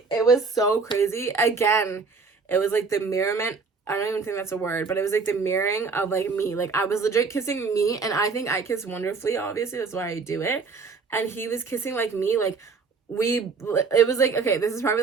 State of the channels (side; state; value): left; quieter; 4.7 dB